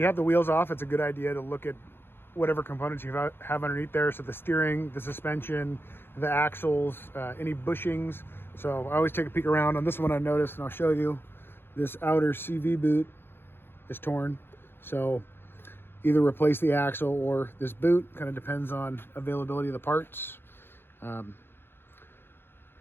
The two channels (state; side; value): late; right; 0.10 ms